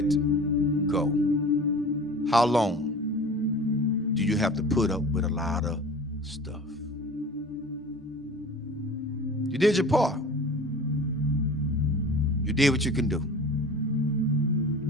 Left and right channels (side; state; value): both; normal; correlation 0.39